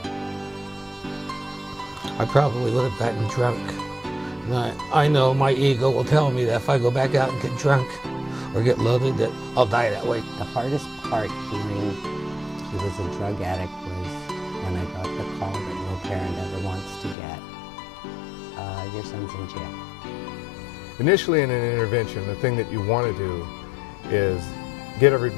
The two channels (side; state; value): right; drops out; at 17.2 s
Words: I probably would have gotten drunk. And I know my ego will tell me that if I go back out and get drunk or get loaded, that I'll die that way. The hardest part hearing he was a drug addict was when I got the call that no parent ever wants to get. Your son's in jail. Initially in an intervention, the thing that you want to do is get